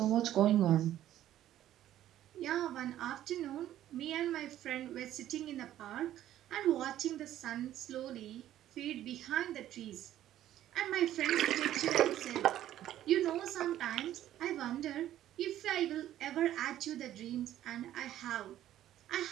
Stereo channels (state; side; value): quieter; left; 12.5 dB